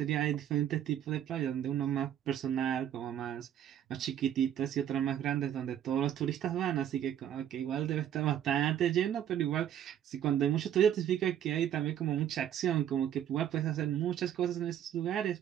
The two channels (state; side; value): quieter; left; 10.3 dB